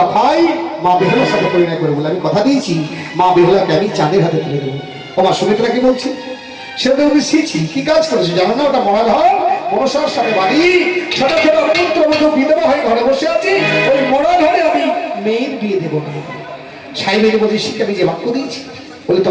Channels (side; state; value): both; identical; correlation 1.00